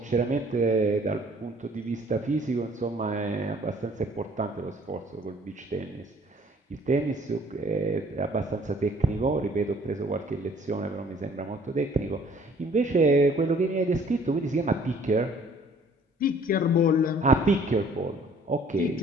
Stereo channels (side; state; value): both; normal; correlation 0.56